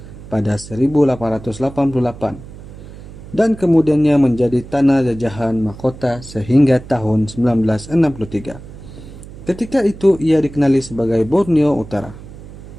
pada 1888 dan kemudiannya menjadi tanah jajahan mahkota sehingga tahun 1963. Ketika itu ia dikenali sebagai Borneo Utara.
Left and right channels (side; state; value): right; noise; hum, 16 dB below the sound